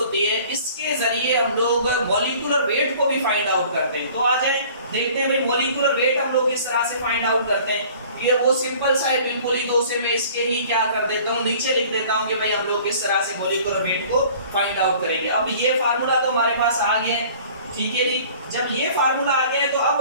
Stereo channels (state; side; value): inverted; both; correlation -0.49